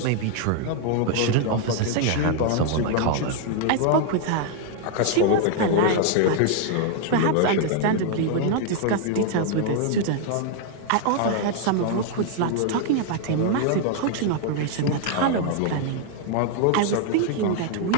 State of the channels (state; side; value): different; both; correlation 0.00